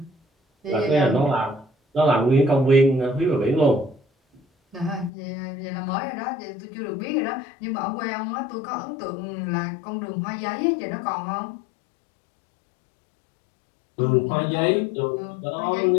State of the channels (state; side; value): drops out; right; at 5.1 s